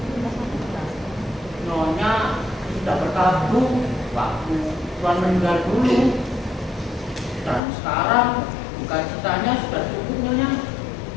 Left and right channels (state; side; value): drops out; right; at 7.6 s